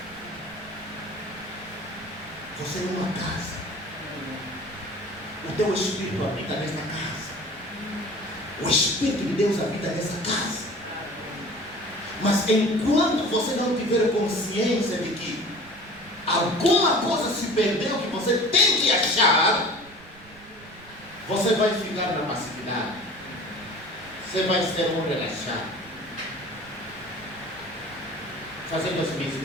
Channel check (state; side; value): noise; right; rumble, 23 dB below the sound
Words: Você é uma casa. O teu Espírito habita nesta casa. O Espírito de Deus habita nessa casa. Mas enquanto você não tiver consciência de que alguma coisa se perdeu que você tem que achar, você vai ficar na passividade. Você vai ser um relaxado, fazendo as